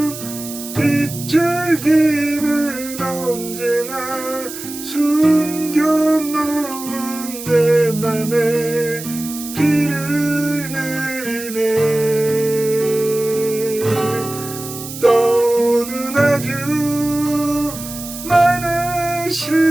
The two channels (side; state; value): right; noise; hiss, 11 dB below the sound